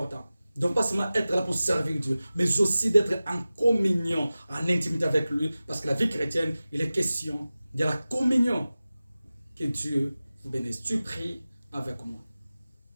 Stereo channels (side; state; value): both; inverted; correlation -0.96